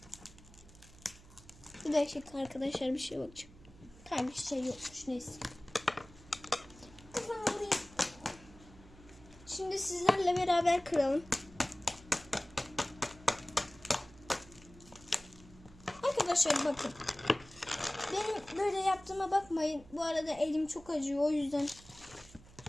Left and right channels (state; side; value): noise; right; hum, 22 dB below the sound